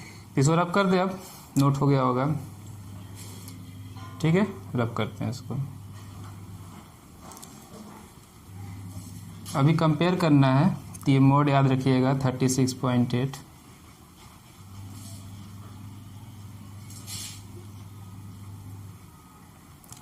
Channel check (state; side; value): identical; both; correlation 1.00